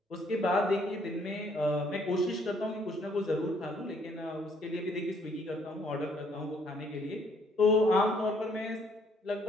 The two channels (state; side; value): normal; both; correlation 0.65